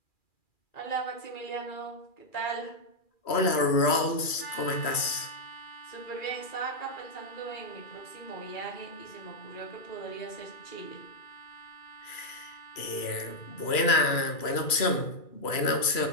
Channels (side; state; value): right; late; 2.4 ms